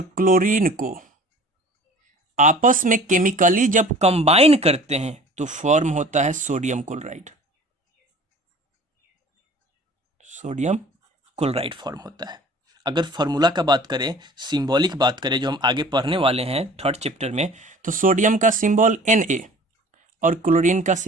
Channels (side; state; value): both; normal; correlation 0.46